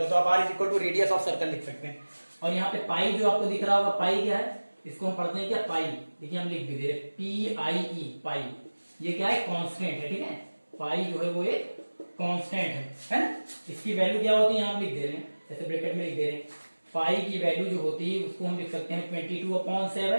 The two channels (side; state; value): both; inverted; correlation -1.00